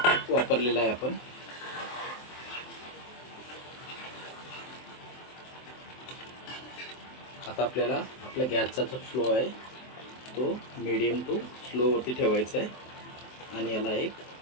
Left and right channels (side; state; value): right; late; 23 ms